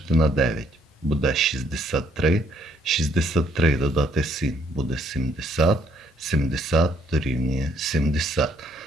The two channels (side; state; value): both; normal; correlation 0.68